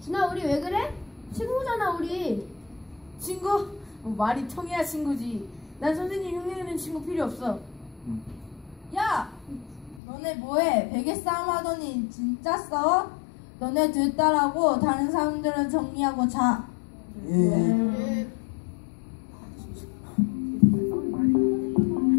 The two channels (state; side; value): drops out; right; at 10.0 s